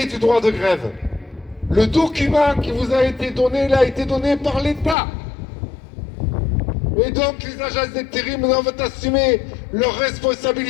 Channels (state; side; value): drops out; right; at 5.0 s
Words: du droit de grève. Le document qui vous a été donné, il a été donné par l'État. Et donc les agences d'intérim doivent assumer leurs